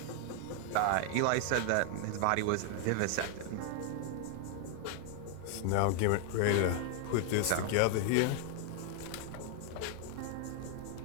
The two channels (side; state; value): both; different; correlation 0.00